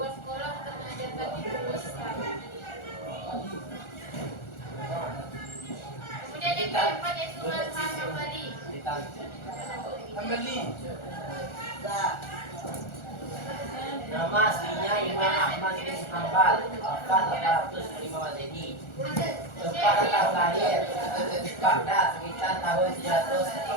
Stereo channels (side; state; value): right; late; 1.4 ms